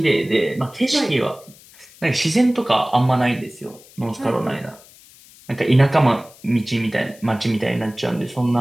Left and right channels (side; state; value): left; noise; hiss, 24 dB below the sound